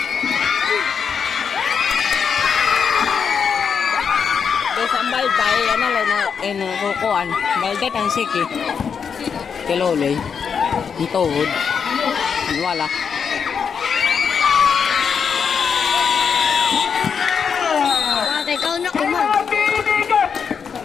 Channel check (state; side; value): quieter; right; 6.6 dB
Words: Sambal tayo, ano lang na kukuan. Baldat ang siki. Kiloloy. Ang tuhod. Wala. Bakit ikaw na kumang?